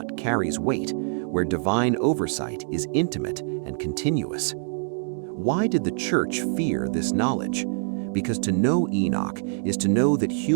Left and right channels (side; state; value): left; silent; digital silence